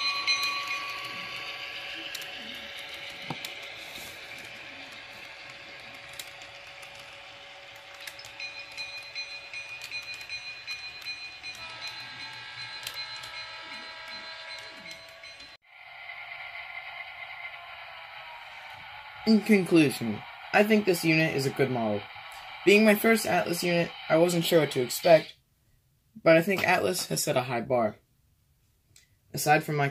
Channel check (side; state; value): both; identical; correlation 1.00